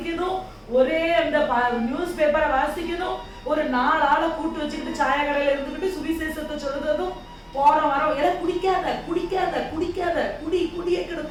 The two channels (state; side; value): identical; both; correlation 1.00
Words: ஒரே அந்த நியூஸ் பேப்பரை வாசிக்கணும், ஒரு 4 ஆளை கூட்டு வச்சுக்கிட்டு சாய கடையில இருந்துக்கிட்டு சுவிசேஷத்தை சொல்றதும், போற வரோம் எல்லாம் குடிக்காத குடிக்காத குடிக்காத குடி குடியே